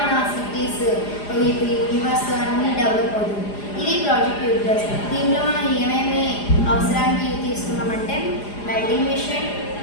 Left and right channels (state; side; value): late; right; 4.9 ms